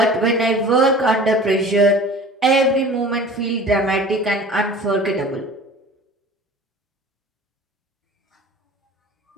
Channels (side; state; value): both; normal; correlation 0.42